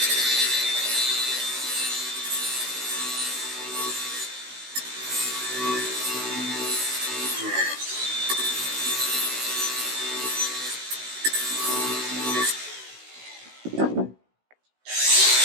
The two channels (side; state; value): left; late; 16 ms